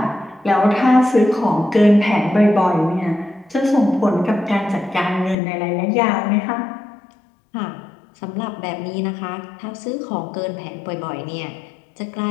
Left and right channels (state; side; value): drops out; right; at 5.4 s